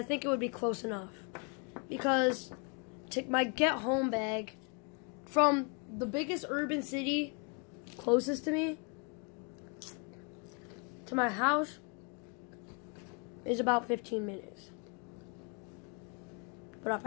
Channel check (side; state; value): right; quieter; 34.2 dB